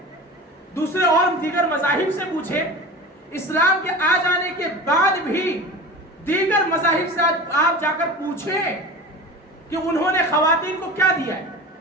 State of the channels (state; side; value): normal; both; correlation 0.34